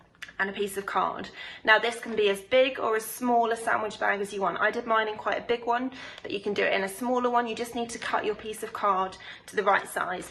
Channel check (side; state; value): both; identical; correlation 1.00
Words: and a piece of card. Now this can be as big or as small a sandwich bag as you want. I did mine in quite a big one, but you can do it in a smaller one. You just need to cut your piece of card to the right size.